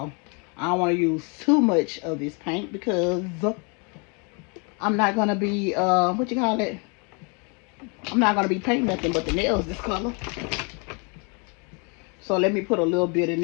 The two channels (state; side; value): quieter; right; 33.9 dB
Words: I don't want to use too much of this paint because I'm not gonna be what you call it? I'm not gonna be painting nothing but the nails this color. So let me put a little bit in